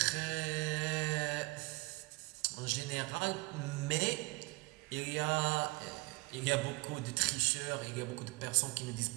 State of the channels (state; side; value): quieter; left; 24.7 dB